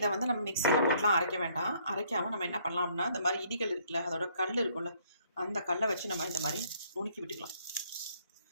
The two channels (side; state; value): both; inverted; correlation -0.64